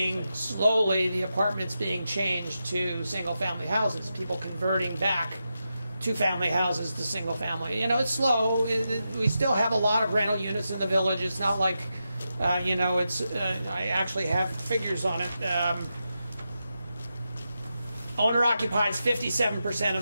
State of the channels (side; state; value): both; inverted; correlation -0.88